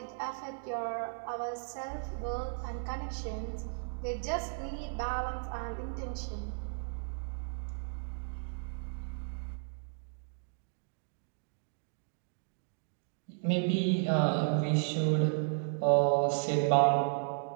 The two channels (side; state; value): left; silent; digital silence